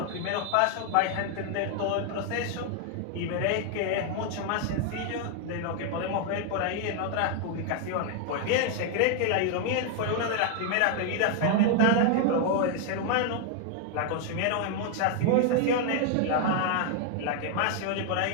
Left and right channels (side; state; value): both; different; correlation 0.00